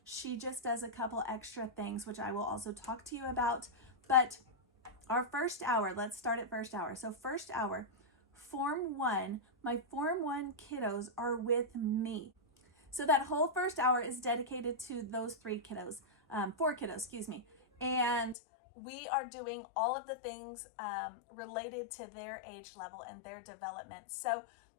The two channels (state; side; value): drops out; right; at 18.4 s